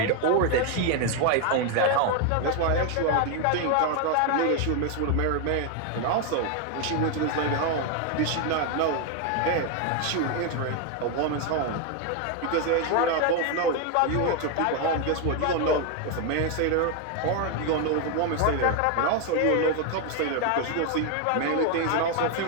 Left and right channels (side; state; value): both; different; correlation 0.01